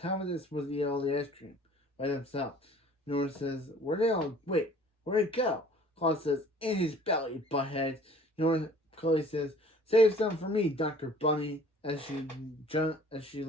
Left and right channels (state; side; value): normal; both; correlation 0.51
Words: are they supposed to eat all the ice cream by themselves? Nora says, where'd it go? Chloe says, in his belly, butthead. Chloe says, save some for me, Dr. Bunny, as she